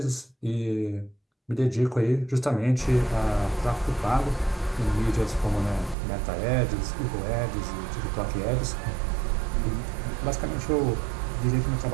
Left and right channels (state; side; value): drops out; left; at 6.0 s